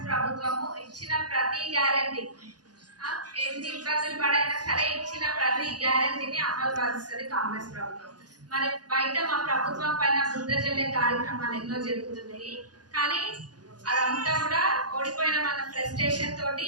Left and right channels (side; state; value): left; late; 0.69 ms